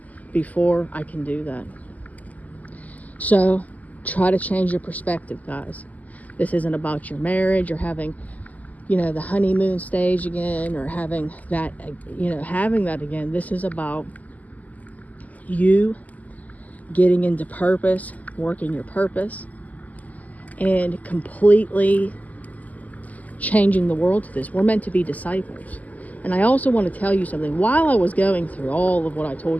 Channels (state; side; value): late; right; 0.077 ms